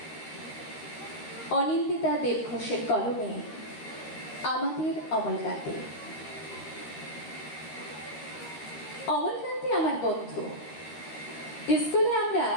অনিন্দিতা দেব ঘোষের কলমে আমাদের অমলকান্তি। অমলকান্তি আমার বন্ধু। স্কুলে আমরা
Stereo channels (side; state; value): right; late; 13 ms